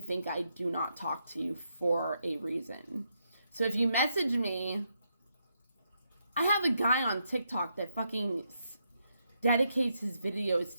I do not talk to you for a reason? So if you message me, I have a guy on TikTok that fucking dedicates his videos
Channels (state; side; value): inverted; both; correlation -0.80